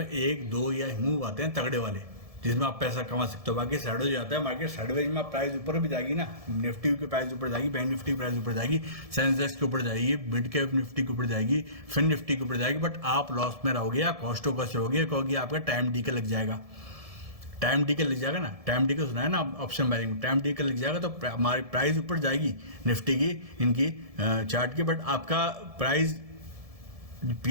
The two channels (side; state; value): left; late; 1.7 ms